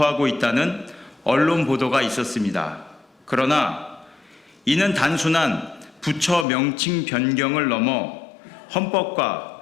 있다는 언론 보도가 있었습니다. 그러나 이는 단순한 부처 명칭 변경을 넘어 헌법과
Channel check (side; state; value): right; drops out; at 6.5 s